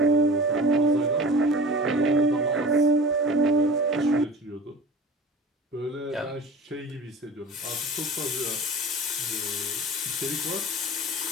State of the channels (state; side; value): normal; both; correlation 0.38